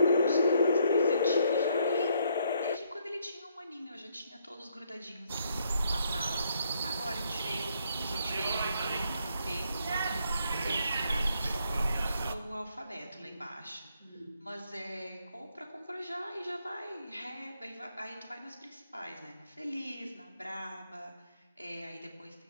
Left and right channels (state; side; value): inverted; both; correlation -0.71